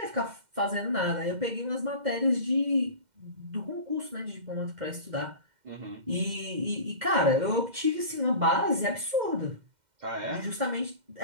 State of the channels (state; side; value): late; left; 2.1 ms